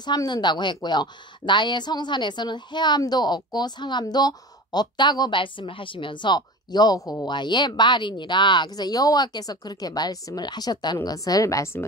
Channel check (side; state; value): both; normal; correlation 0.33